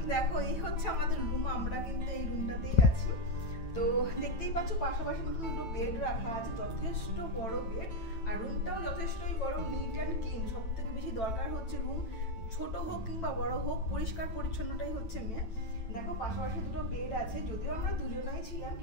দেখো এই হচ্ছে আমাদের রুম, আমরা কিন্তু এই রুমটাতেই আছি। তো দেখতেই পাচ্ছ পাশাপাশি কিন্তু দুটো বেড রাখা আছে, যথেষ্ট বড় বেড, আর রুমটাও যথেষ্টই বড়, নিট অ্যান্ড ক্লিন। সব থেকে বেশি দরকার হচ্ছে রুম ছোট হোক কিংবা বড় হোক, পরিষ্কার পরিচ্ছন্নটাই হচ্ছে মেন। দেখো পাশাপাশি দুটো বেড আছে, যদিও আমরা দুজনাই ছিলাম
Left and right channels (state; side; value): late; right; 9.0 ms